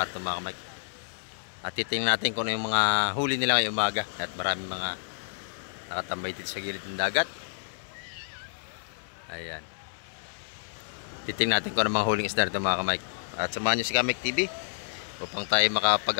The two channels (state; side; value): silent; right; 56 dB below the other